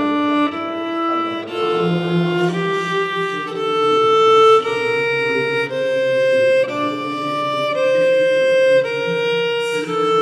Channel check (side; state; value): both; identical; correlation 1.00